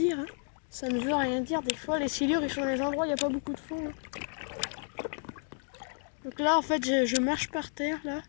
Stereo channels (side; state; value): right; silent; 57 dB below the other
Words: hein. Ça ne veut rien dire. Des fois, les silures, ils sont dans les endroits où il n'y a pas beaucoup de fond. Hein. Donc là, en fait, je marche par terre, là.